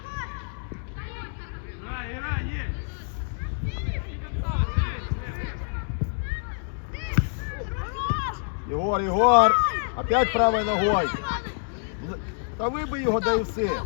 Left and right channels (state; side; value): silent; right; digital silence